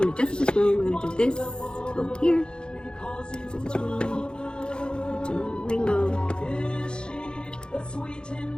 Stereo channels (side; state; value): right; late; 0.049 ms